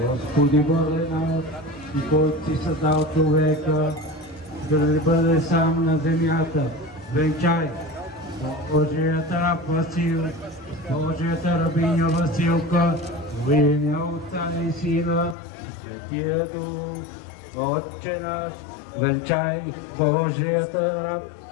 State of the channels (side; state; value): right; drops out; at 15.4 s